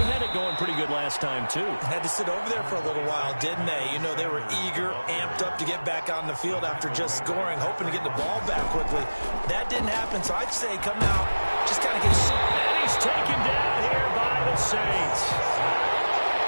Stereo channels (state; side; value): inverted; both; correlation -1.00